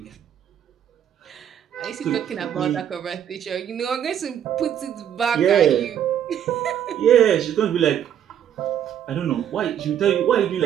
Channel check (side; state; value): left; quieter; 9.7 dB